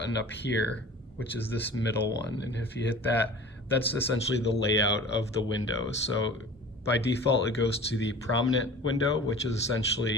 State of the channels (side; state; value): both; normal; correlation 0.41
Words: up here, which is this middle one. And if you hit that, that's essentially the layout of the windows. So by default, it goes to the prominent window, which is